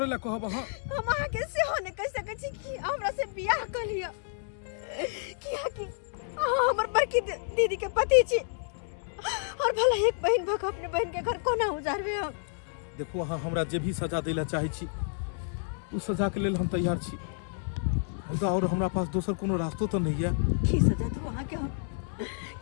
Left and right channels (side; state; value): right; silent; digital silence